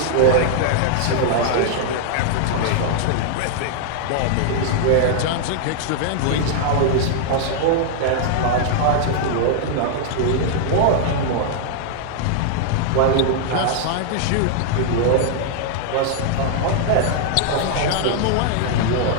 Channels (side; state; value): both; different; correlation -0.01